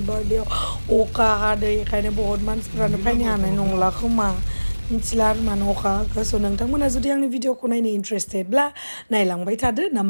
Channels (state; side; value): inverted; both; correlation -1.00